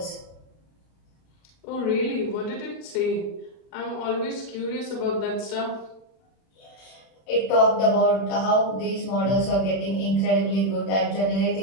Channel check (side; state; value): right; late; 31 ms